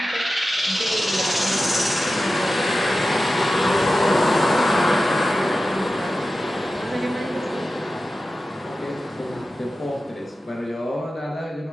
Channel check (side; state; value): both; normal; correlation 0.94